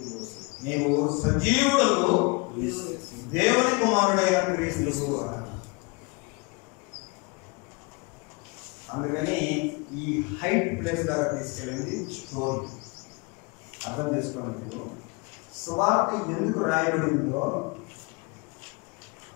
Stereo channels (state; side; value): quieter; right; 29.0 dB